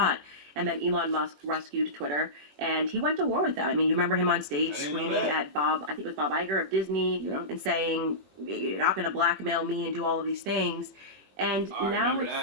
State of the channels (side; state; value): left; late; 21 ms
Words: And then Elon Musk rescued Twitter, and he went to war with them. I mean, you remember him on stage screaming at Bob, I think it was Bob Iger of Disney, and saying, you're not going to blackmail me and do all of these things. And now